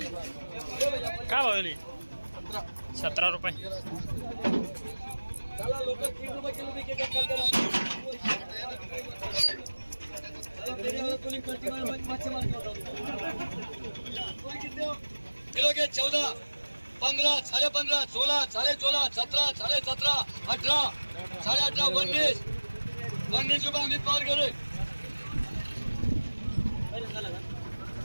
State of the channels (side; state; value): both; inverted; correlation -1.00